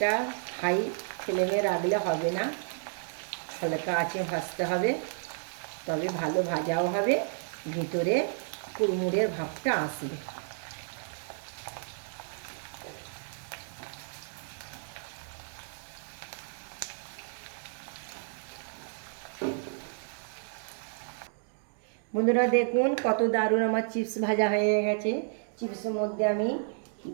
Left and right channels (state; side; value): silent; left; 57 dB below the other